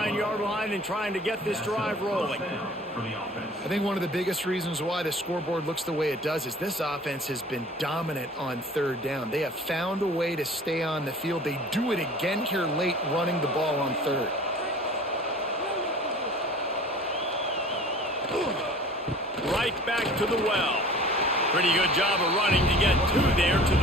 line and trying to get this drive rolling. I think one of the biggest reasons why the scoreboard looks the way it does is this offense has been dominant on third down. They have found a way to stay on the field. They do it again here late, running the ball on third. Right back to the well. Pretty good job of running to get two there to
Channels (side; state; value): both; normal; correlation 0.46